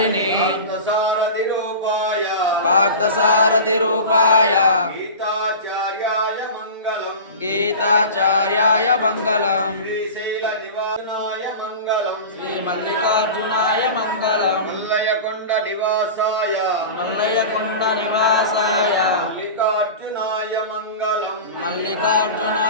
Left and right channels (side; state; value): both; inverted; correlation -0.32